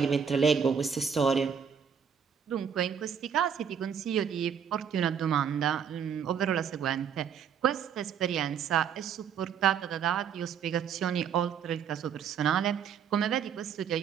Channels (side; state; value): left; quieter; 7.6 dB